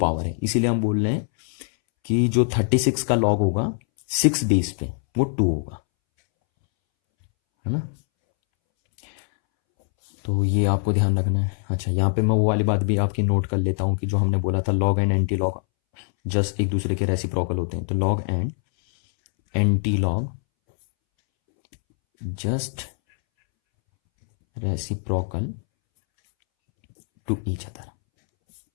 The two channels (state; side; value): silent; right; 63 dB below the other